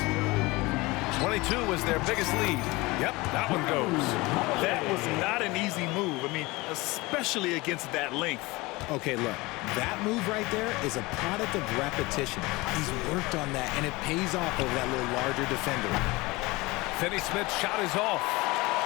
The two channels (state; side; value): quieter; right; 22.5 dB